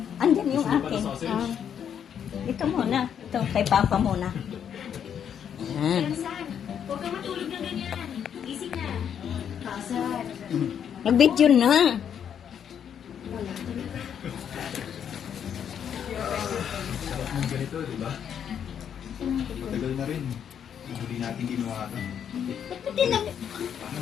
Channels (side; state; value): right; quieter; 8.5 dB